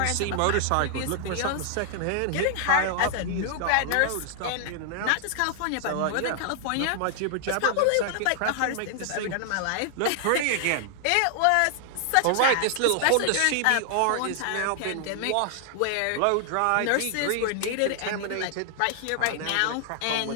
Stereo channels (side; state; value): both; different; correlation 0.00